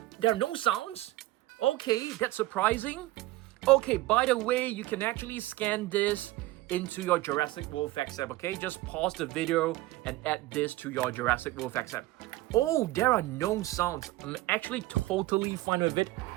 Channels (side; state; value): left; quieter; 17.9 dB